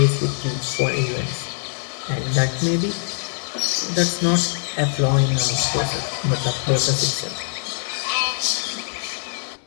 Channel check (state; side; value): silent; right; digital silence